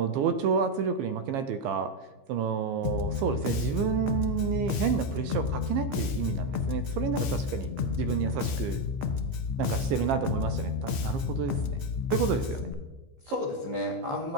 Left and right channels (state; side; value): late; left; 15 ms